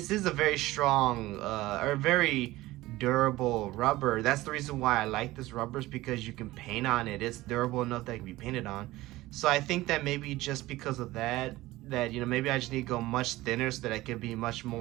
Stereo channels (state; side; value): quieter; left; 17.9 dB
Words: is a very strong, or very durable rubber. That's the reason why I like this rubber, is because you can paint on it. It's durable enough that it can be painted on. So I think that maybe just because of that, maybe I just need to go much thinner so that I can be much